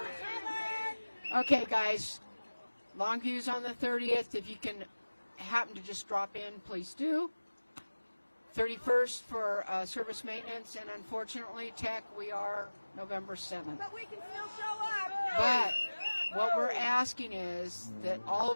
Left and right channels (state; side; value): inverted; both; correlation -1.00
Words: Okay, guys. Longview's on the 30th. If you can happen to just drop in, please do. 31st for service maintenance, and unfortunately, tech, we are November 7th. But we can still show up. But what we're asking is that all